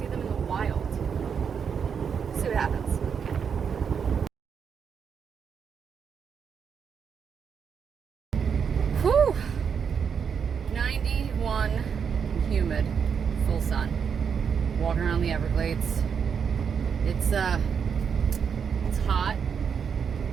them in the wild. See what happens. Whew. 91, humid, full sun. Walking around the Everglades. It's hot.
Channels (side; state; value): left; quieter; 6.8 dB